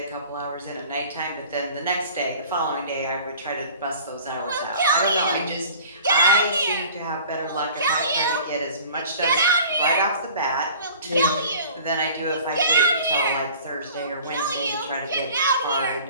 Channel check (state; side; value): inverted; both; correlation -0.46